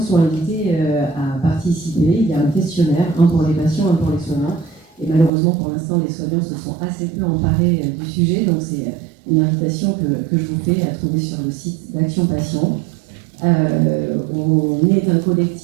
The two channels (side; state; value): left; drops out; at 5.3 s